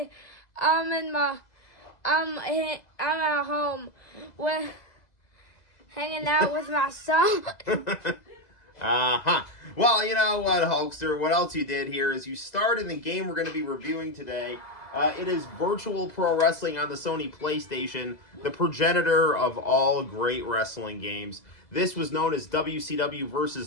at home with hanging out with my son. Well, you know what, Hulkster? What else you did here is you started the game we're going to be reviewing today. It is Virtual Pro Wrestling on the Sony PlayStation, the progenitor of all great wrestling games. This was known as WCW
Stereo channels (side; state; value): right; late; 2.0 ms